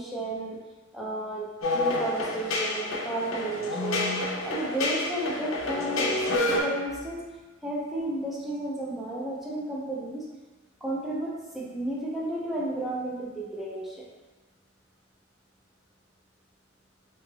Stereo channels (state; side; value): normal; both; correlation 0.22